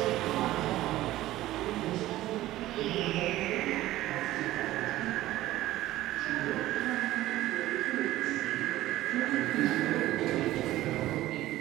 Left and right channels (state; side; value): quieter; left; 15.7 dB